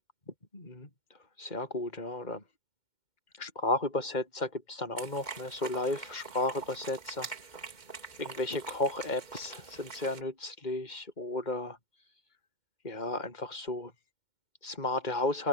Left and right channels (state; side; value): late; right; 2.1 ms